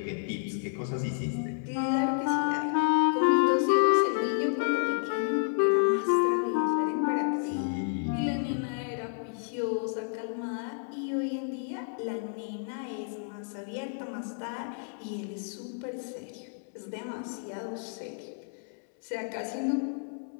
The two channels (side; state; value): right; silent; 58 dB below the other